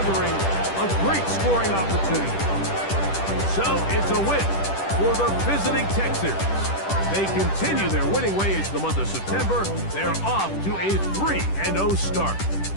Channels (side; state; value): right; late; 10 ms